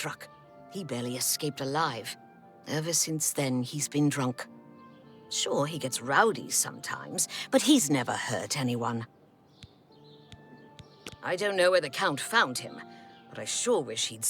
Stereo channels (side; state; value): both; identical; correlation 1.00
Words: He barely escaped alive. Ever since then, he's been drunk. Sure, he gets rowdy sometimes, but he's never hurt anyone. I don't know where the Count found him, but I sure wish he'd